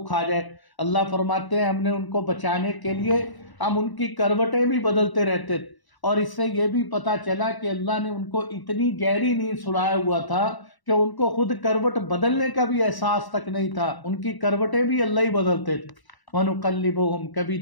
کھا جائے۔ اللہ فرماتے ہیں ہم نے ان کو بچانے کے لیے ہم ان کی کروٹیں بھی بدلتے رہتے تھے، اور اس سے یہ بھی پتہ چلا کہ اللہ نے ان کو اتنی گہری نیند سلایا ہوا تھا کہ ان کو خود کروٹ بدلنے کا بھی احساس تک نہیں تھا، ان کی کروٹیں بھی اللہ ہی بدلتے تھے۔ وَنُقَلِّبُهُمْ، کبھی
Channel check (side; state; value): right; late; 1.0 ms